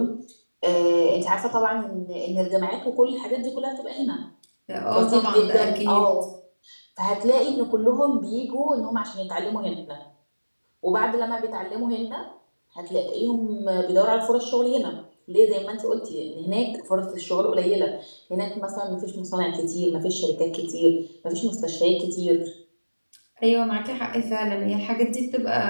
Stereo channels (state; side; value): inverted; both; correlation -1.00